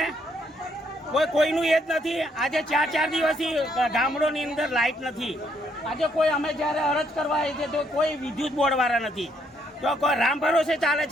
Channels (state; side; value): normal; both; correlation 0.72